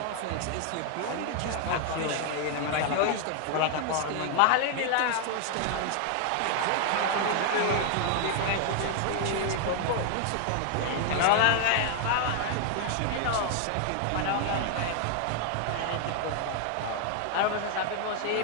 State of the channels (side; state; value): both; different; correlation 0.00